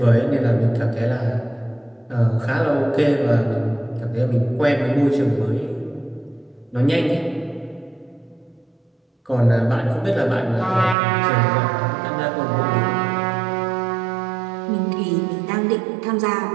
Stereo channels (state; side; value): drops out; left; at 11.0 s